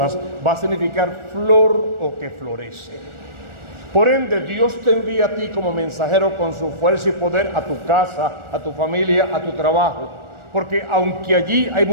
va a significar flor o que florece. Por ende, Dios te envía a ti como mensajero con su fuerza y poder a tu casa, a tu familia, a tu trabajo. Porque aunque allí hay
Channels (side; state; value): left; late; 1.4 ms